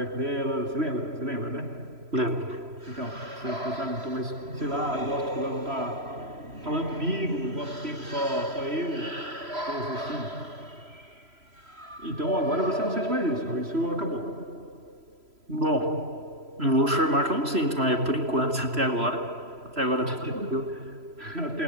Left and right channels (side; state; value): left; late; 3.0 ms